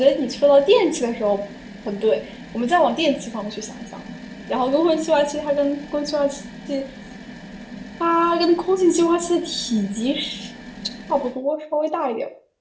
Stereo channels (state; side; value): identical; both; correlation 1.00